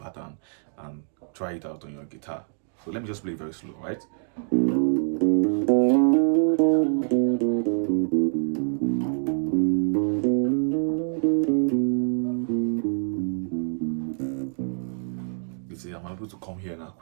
and try it out on your guitar. So let me just play very slow, right? You see, I'm able to come here now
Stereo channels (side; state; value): left; silent; digital silence